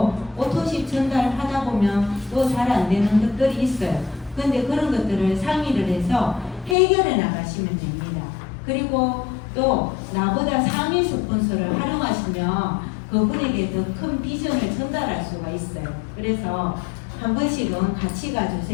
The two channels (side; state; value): right; drops out; at 6.8 s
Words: 오토십 전달하다 보면 또 잘 안 되는 것들이 있어요. 근데 그런 것들을 상의를 해서 해결해 나가시면 됩니다. 그리고 또 나보다 상위 스폰서를 활용하시면 그분에게 더 큰 비전을 전달할 수가 있어요. 그래서 한 번씩은 같이